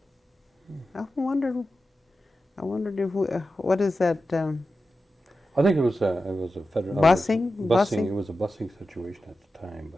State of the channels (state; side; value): normal; both; correlation 0.92